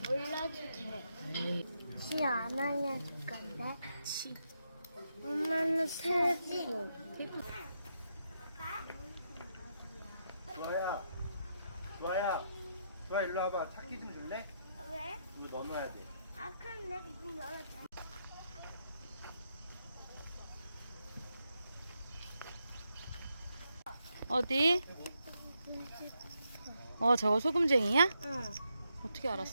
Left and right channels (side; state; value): both; inverted; correlation -0.81